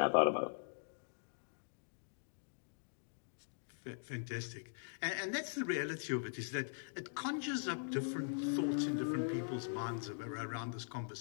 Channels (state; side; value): silent; right; digital silence